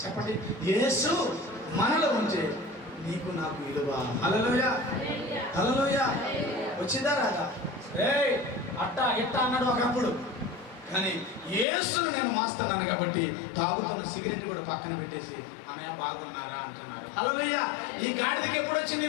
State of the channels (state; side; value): drops out; right; at 11.7 s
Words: చెప్పండి, యేసు మనలో ఉంటే నీకు నాకు విలువ. హల్లెలూయా. హల్లెలూయా. వచ్చిందా రాదా? అట్టా ఎట్టా అన్నాడు ఒకప్పుడు, కానీ యేసును నేను మోస్తున్నాను కాబట్టి తాగుతున్న సిగరెట్ కూడా పక్కన పెట్టేసి అన్నయ్య బాగున్నారా అంటున్నాడు. హల్లెలూయా. ఈ గాడిదకి ఎప్పుడు వచ్చింది